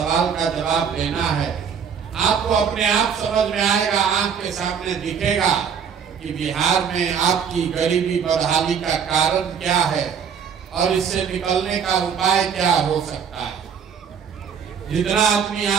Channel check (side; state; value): left; quieter; 7.2 dB